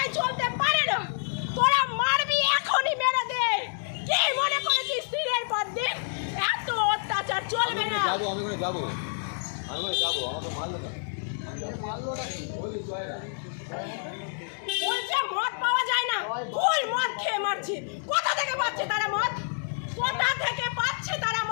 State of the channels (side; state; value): right; silent; digital silence